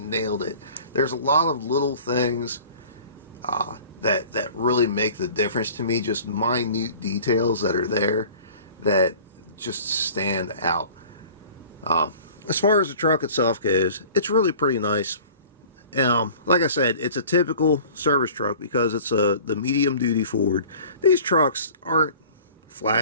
it. There's a lot of little things that really make the difference to me. Just minute details that are there that just stand out. As far as the truck itself goes, it's really pretty nice. Like I said, it's a typical service truck because it's the medium duty Ford. These trucks aren't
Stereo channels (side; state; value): both; inverted; correlation -0.46